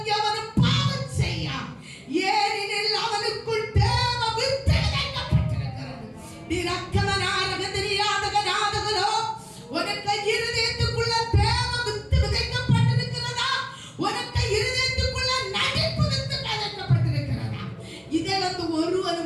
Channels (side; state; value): both; identical; correlation 1.00